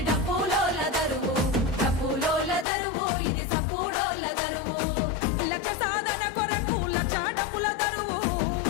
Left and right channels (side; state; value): right; drops out; at 2.7 s